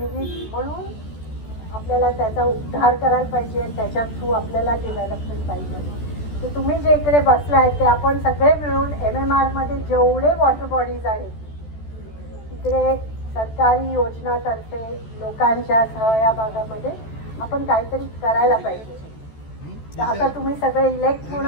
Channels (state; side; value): late; right; 14 ms